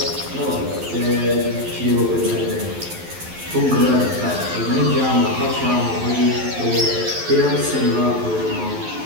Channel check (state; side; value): late; left; 11 ms